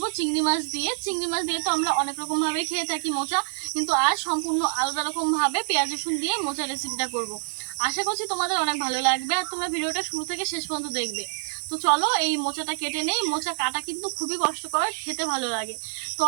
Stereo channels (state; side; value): silent; left; 57 dB below the other